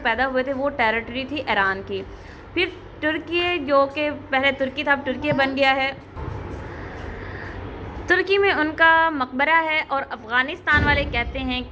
पैदा हुए थे वो टेरिटरी थी ईरान की। फिर तुर्की, जो कि पहले तुर्की था, अब तुर्की बन गया है। तुर्की में उनका मकबरा है और अफ़गानिस्तान वाले कहते हैं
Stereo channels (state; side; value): identical; both; correlation 1.00